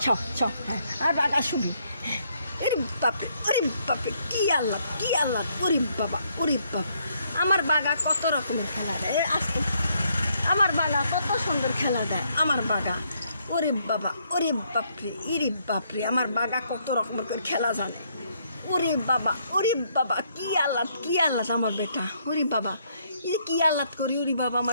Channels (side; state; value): both; inverted; correlation -0.71